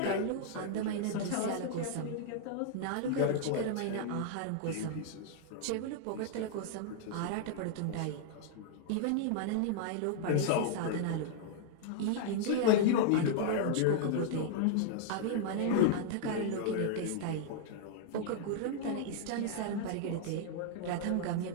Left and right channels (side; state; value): both; different; correlation -0.01